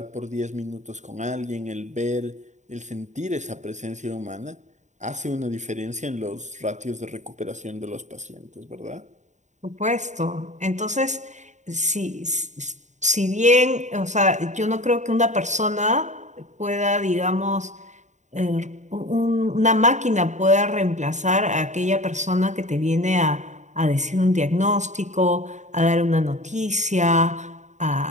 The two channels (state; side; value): late; left; 0.34 ms